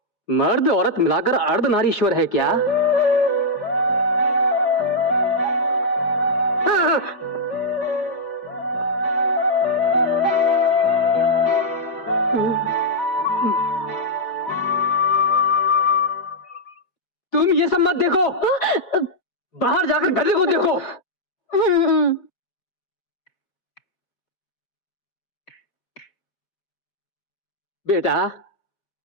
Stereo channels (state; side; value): late; right; 5.1 ms